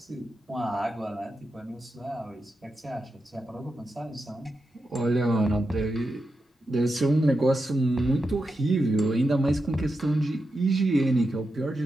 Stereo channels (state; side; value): normal; both; correlation 0.88